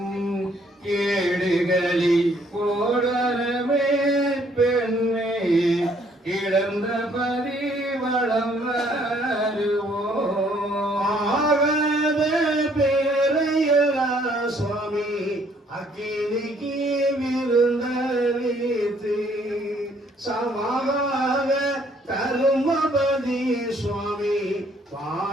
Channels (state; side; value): normal; both; correlation 0.65